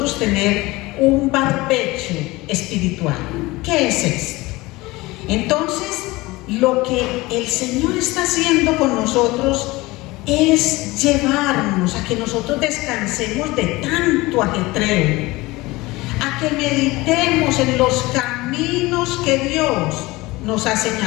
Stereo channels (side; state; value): right; quieter; 21.1 dB